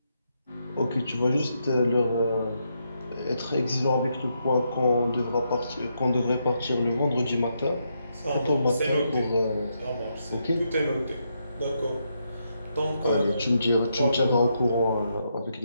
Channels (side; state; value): both; inverted; correlation -0.80